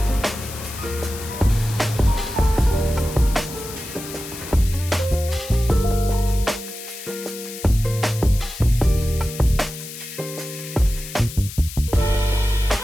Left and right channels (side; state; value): left; noise; hiss, 12 dB below the sound